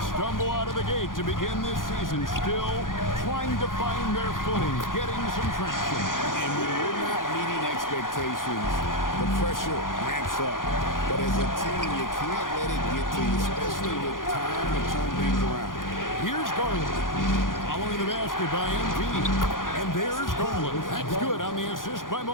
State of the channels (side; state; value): right; late; 0.90 ms